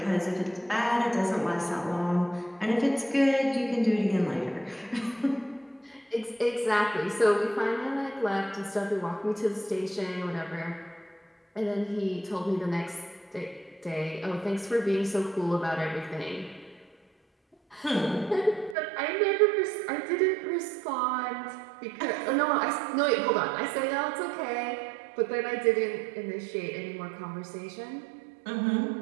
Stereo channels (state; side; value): drops out; left; at 18.8 s